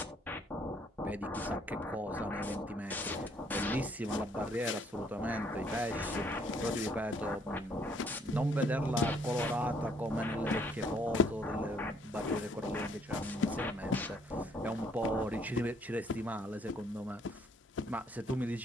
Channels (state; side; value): normal; both; correlation 0.66